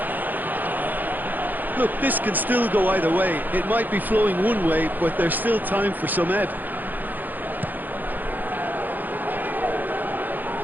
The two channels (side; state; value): left; late; 0.085 ms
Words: Look, this can still go either way. It might be flowing one way, but there's still time for some ebb.